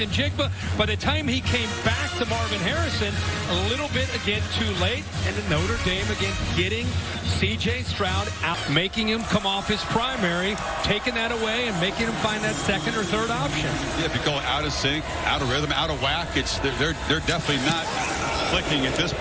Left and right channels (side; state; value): both; identical; correlation 1.00